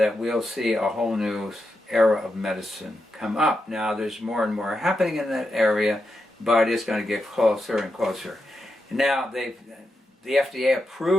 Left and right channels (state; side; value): normal; both; correlation 0.87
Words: we'll see a whole new era of medicine come up. Now there's more and more happening in that area, but it's going to get closer and closer. Now the FDA